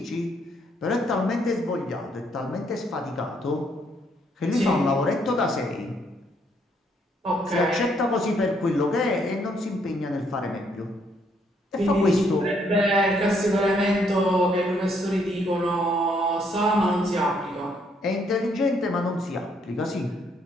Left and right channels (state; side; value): normal; both; correlation 0.70